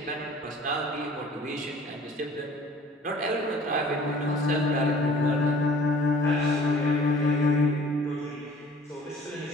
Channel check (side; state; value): both; normal; correlation 0.49